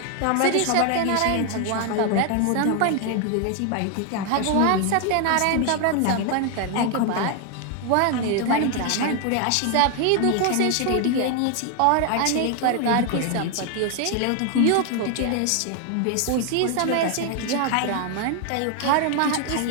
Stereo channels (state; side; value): different; both; correlation 0.00